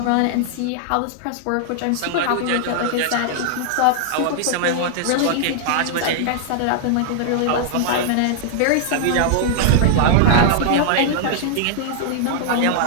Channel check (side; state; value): both; different; correlation -0.01